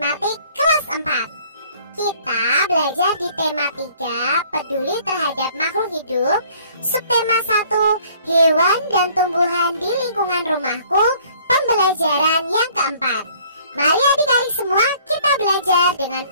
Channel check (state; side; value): inverted; both; correlation -0.57